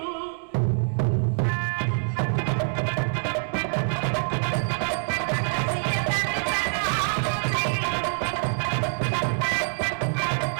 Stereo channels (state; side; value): silent; left; 61 dB below the other